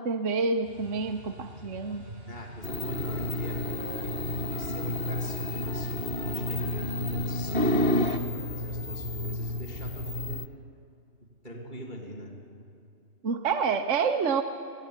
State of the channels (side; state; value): left; late; 2.7 ms